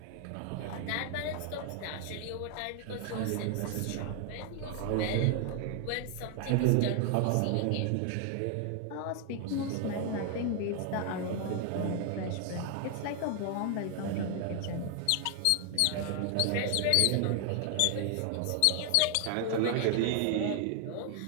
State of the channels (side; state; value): both; different; correlation 0.00